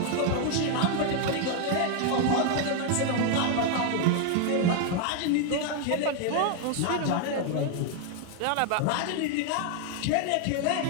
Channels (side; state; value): both; different; correlation 0.00